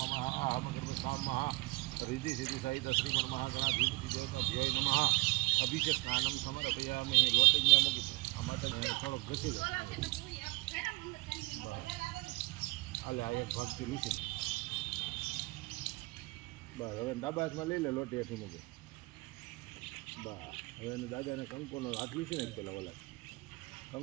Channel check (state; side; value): quieter; left; 24.7 dB